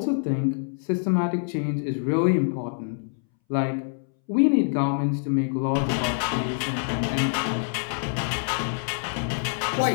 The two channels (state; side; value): silent; right; 61 dB below the other